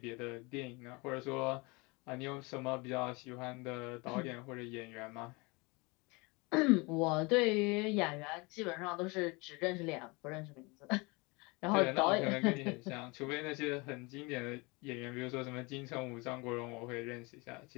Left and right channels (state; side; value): quieter; right; 26.9 dB